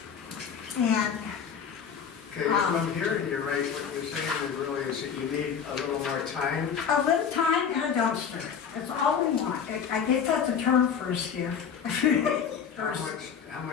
And Okay, if I'm hearing you right, what you're saying really is that you need a little more time. a little time and a dumpster. That's all we want. I guess that's a term for a skiff. How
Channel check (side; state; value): right; quieter; 7.2 dB